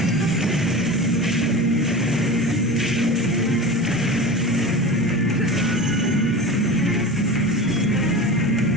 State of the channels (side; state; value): both; normal; correlation 0.31